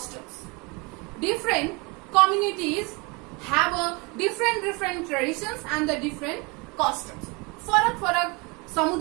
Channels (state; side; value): quieter; left; 28.3 dB